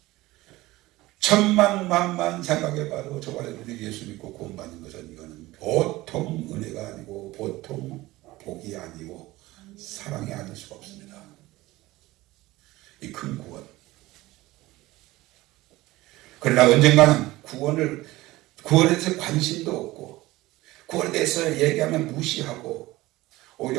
천만만만 생각해봐도 저와 여러분이 예수 믿고 구원받는 것은 이거는 보통 은혜가 아니고 보통 복이 아니고 사랑이 아닐 수가 없습니다. 이 큰 구원. 그러나 언젠가는 구원에 대해서 관심도 없고 구원에 대해서 얘기하면 무시하고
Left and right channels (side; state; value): left; quieter; 18.6 dB